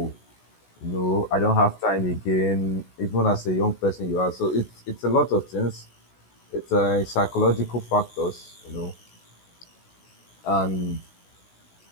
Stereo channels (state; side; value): late; right; 16 ms